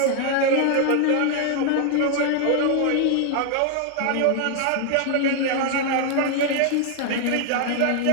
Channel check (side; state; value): both; different; correlation 0.00